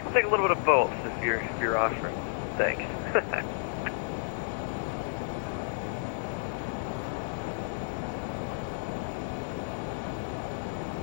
we'll take a little bit of both if you're offering. Thanks.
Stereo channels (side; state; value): right; silent; 57 dB below the other